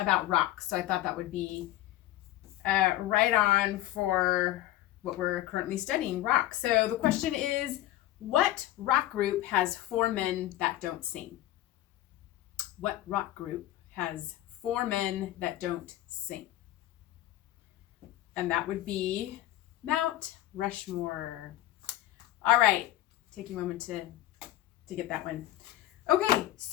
rocks, so I thought that would be right on for what we're currently studying, rocks. So the question is, what rock group has four men that don't sing? What rock group has four men that don't sing? And that would be Mount Rushmore. All right, take a moment to get that one. Okay,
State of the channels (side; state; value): right; quieter; 15.0 dB